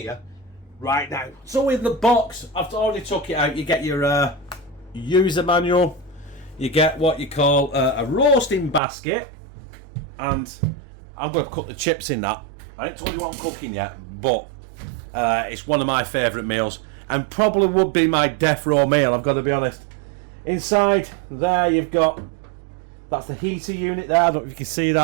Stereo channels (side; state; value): left; drops out; at 8.8 s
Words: right now. So in the box, I've already took it out. You get your user manual, you get what you call a roasting basket, and I'm going to cook the chips in that. I haven't told you what I'm cooking yet, but it's one of my favourite meals, and probably would be my death row meal, I've got to be honest. Inside there you've got, that's the heater unit there, I don't know if you can see